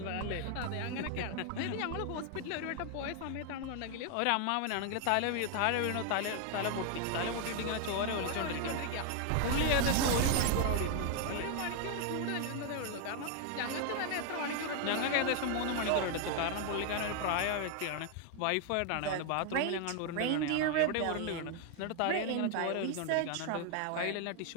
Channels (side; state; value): both; different; correlation 0.00